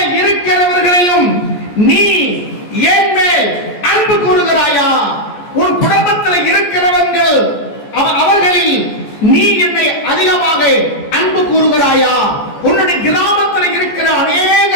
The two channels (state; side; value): late; right; 14 ms